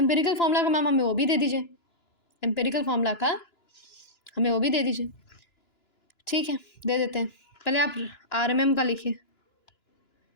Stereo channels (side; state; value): right; late; 2.9 ms